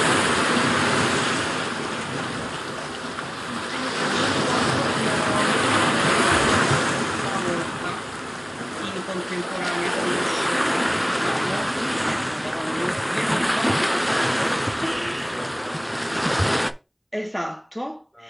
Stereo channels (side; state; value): both; identical; correlation 1.00